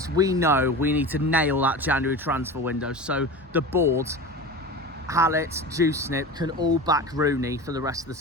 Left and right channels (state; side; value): normal; both; correlation 0.30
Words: we know we need to nail that January transfer window, so the board, Hallett, Juicenip can all back Rooney for the rest of the